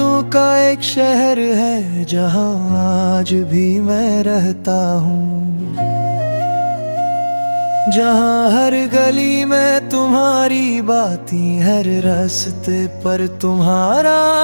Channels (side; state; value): both; inverted; correlation -1.00